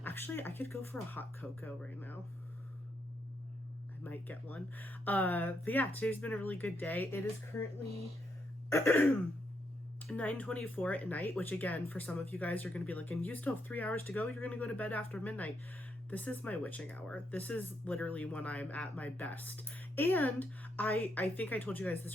Actually, I could go for a hot cocoa right now. I might get one. But yeah, today's been a really good day. It is currently 9:24 at night, which again, for some of you guys are going to be like, and you still have 3 hours to go, you're going to go to bed after midnight. This is my witching hour. This is literally when I'm at my best. And I think I told you guys this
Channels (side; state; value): both; normal; correlation 0.78